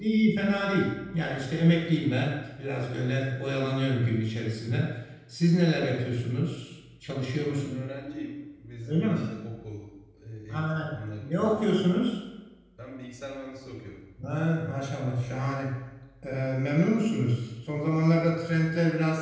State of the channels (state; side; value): identical; both; correlation 1.00